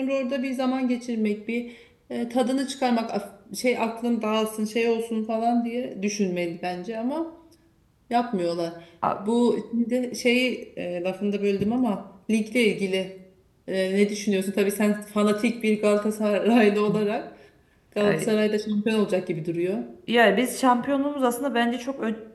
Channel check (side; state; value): both; identical; correlation 1.00